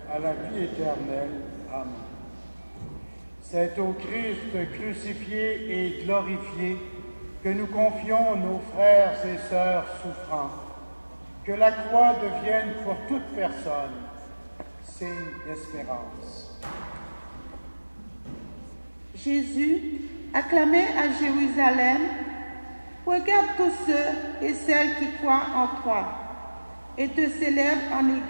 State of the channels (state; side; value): inverted; both; correlation -1.00